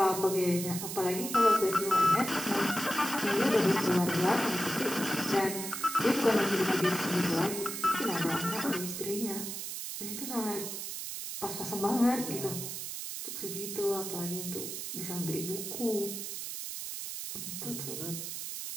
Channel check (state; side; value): noise; right; hiss, 6 dB below the sound